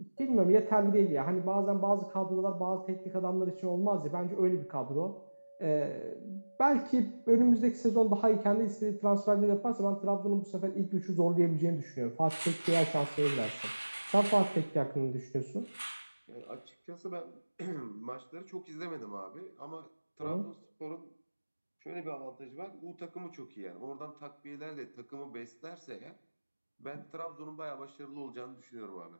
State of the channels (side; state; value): both; inverted; correlation -1.00